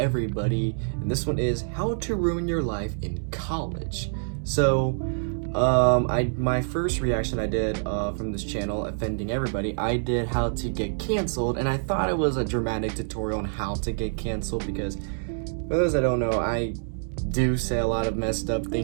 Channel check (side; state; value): left; silent; digital silence